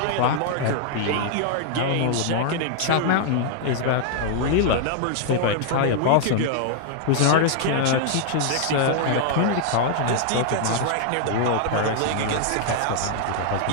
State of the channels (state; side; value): different; both; correlation -0.01